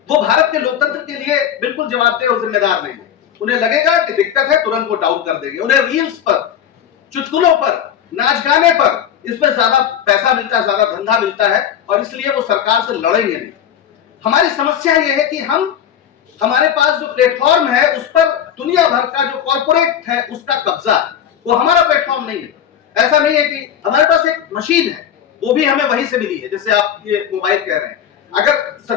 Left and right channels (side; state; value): right; quieter; 9.3 dB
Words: वो भारत के लोकतंत्र के लिए बिल्कुल जवाबदेह और जिम्मेदार नहीं है। उन्हें लगेगा कि दिक्कत है, तुरंत वो डाउन कर देंगे। उन्हें रील्स पर, चुटकुलों पर, नाच गाने पर, इसमें ज्यादा पैसा मिलता है, ज्यादा धंधा मिलता है, और इसलिए वो सरकार से लड़ेंगे नहीं। हमारी समस्या ये है कि हमारे पास जो प्लेटफॉर्म है उस पर दुनिया भर का जो कॉर्पोरेट है उसका कब्जा, वो हमारा प्लेटफॉर्म नहीं है। ऐसा नहीं है कि हमारे पास एक मशीन है, वो भी हमें वहीं से मिली है, जैसे आप ये मोबाइल कह रहे हैं। अगर